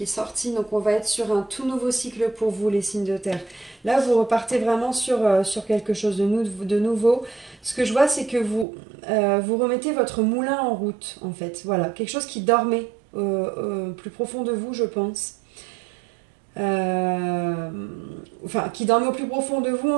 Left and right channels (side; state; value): left; drops out; at 8.7 s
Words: est sortie, donc on va être sur un tout nouveau cycle pour vous, les signes de terre. Là, vous repartez vraiment sur quelque chose de nouveau. Ce que je vois, c'est que vous remettez votre moulin en route, en fait. Voilà, quelque chose qui dormait plus profond de vous, je pense. Enfin, qui dormait au plus profond de vous,